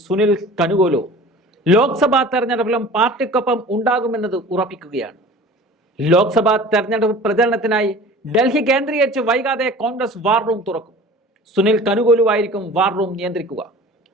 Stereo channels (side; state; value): both; normal; correlation 0.42